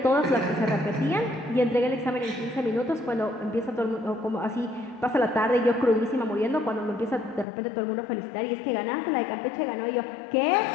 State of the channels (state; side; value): drops out; right; at 7.5 s